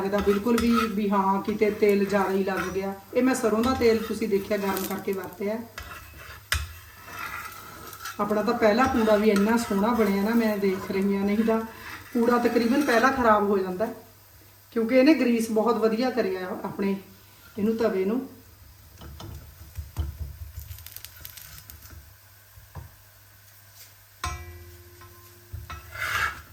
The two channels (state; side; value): identical; both; correlation 1.00